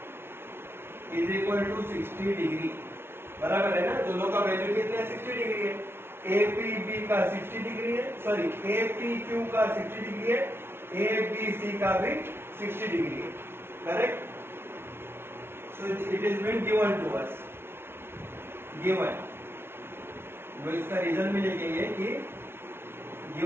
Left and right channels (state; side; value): late; left; 0.12 ms